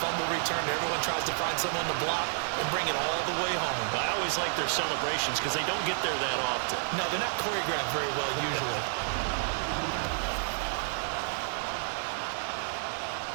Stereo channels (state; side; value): silent; left; digital silence